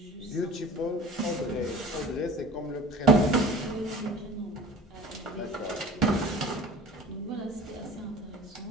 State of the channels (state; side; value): normal; both; correlation 0.43